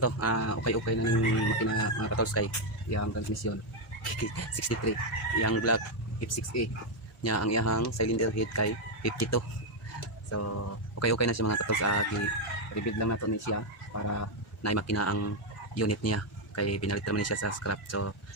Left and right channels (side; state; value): both; normal; correlation 0.02